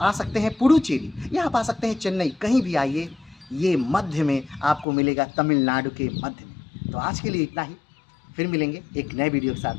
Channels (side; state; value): right; drops out; at 4.9 s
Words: आ सकते हैं पुडुचेरी, या आप आ सकते हैं चेन्नई। कहीं भी आइए, ये मध्य में आपको मिलेगा, तमिलनाडु के मध्य में। तो आज के लिए इतना ही, फिर मिलेंगे एक नए वीडियो के